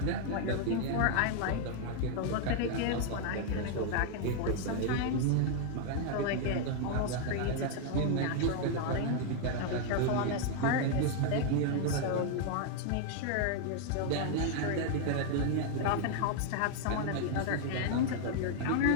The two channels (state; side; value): different; both; correlation 0.00